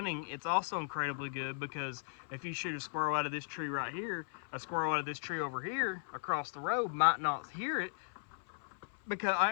it's also incredibly good because if you shoot a squirrel out of this tree right here, a squirrel out of this tree over here across the road might not hear it because,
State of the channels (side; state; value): right; silent; 53 dB below the other